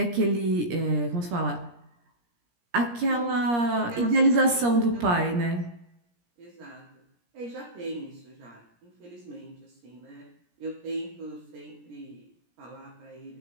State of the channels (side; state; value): left; late; 17 ms